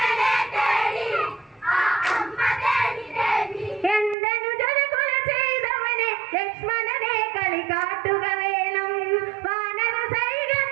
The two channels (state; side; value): drops out; left; at 4.2 s